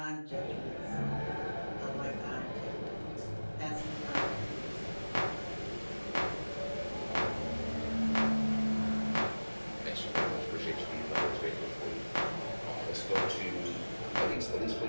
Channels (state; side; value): inverted; both; correlation -1.00